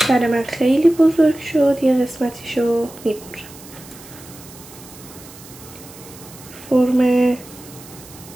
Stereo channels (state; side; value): noise; right; hiss, 19 dB below the sound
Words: برای من خیلی بزرگ شد، یه قسمتیشو میبرم. فرم